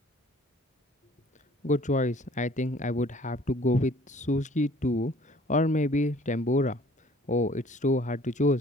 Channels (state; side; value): normal; both; correlation 0.55